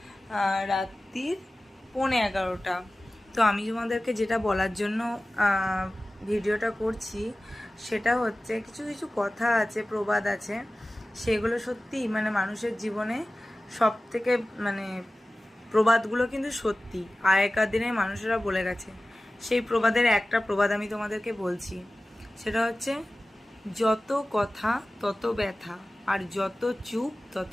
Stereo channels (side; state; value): both; normal; correlation 0.97